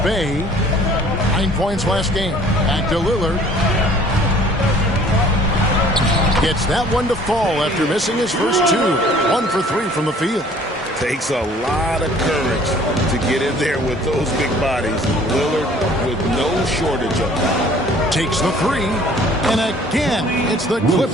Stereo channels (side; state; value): both; normal; correlation 0.53